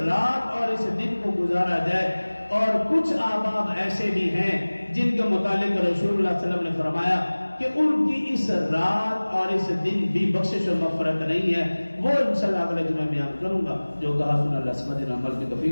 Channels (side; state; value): both; inverted; correlation -1.00